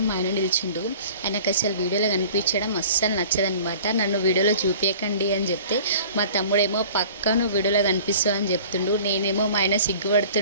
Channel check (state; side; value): inverted; both; correlation -0.45